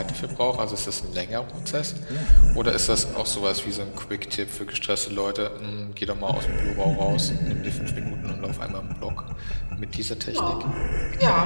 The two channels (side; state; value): both; inverted; correlation -1.00